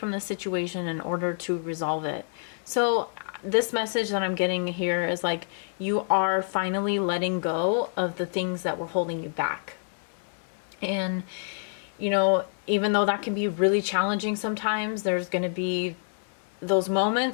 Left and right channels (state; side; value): silent; right; digital silence